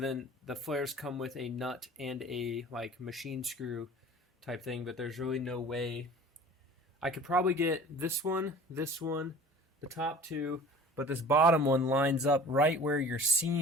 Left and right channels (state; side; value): normal; both; correlation 0.43